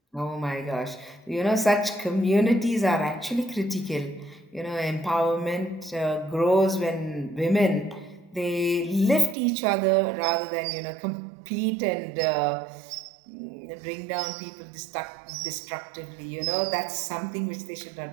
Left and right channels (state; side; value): drops out; left; at 9.3 s